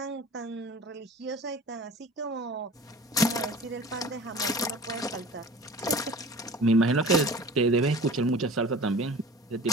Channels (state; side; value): normal; both; correlation 0.41